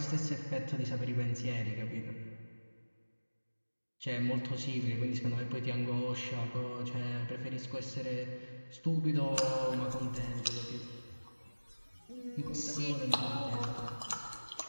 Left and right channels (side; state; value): both; inverted; correlation -1.00